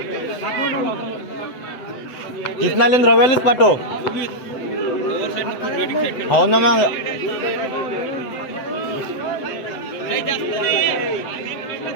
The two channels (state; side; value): late; right; 7.9 ms